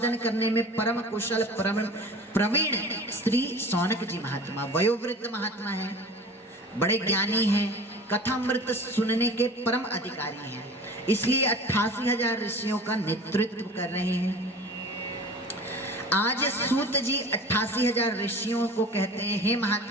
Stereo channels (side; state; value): both; normal; correlation 0.40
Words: करने में परम कुशल परम प्रवीण श्री सौनक जी महात्मा, वयोवृद्ध महात्मा है, बड़े ज्ञानी हैं, कथामृत सुनने के परम अधिकारी हैं, इसलिए 88,000 ऋषियों का नेतृत्व कर रहे हैं। आज सूत जी 88,000 ऋषियों को कहते हैं, हे